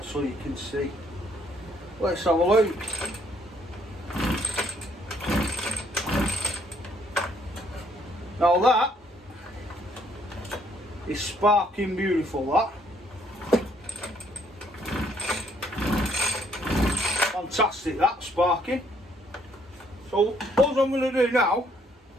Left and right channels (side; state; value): both; normal; correlation 0.67